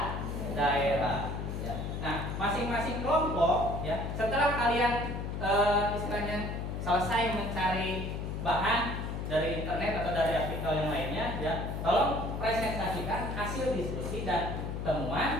daerah. Ya. Nah, masing-masing kelompok ya setelah kalian istilahnya selesai mencari bahan dari internet atau dari artikel yang lainnya ya, tolong presentasikan hasil diskusi dan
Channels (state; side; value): noise; left; hum, 4 dB below the sound